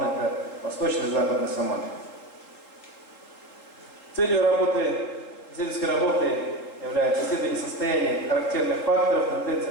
это восточный и западный самоны. Целью исследовательской работы является исследование состояния характерных факторов, тенденций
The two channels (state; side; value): late; right; 3.8 ms